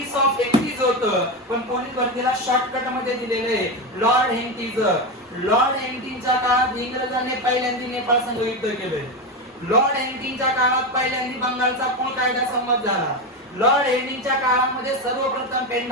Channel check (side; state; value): both; normal; correlation 0.14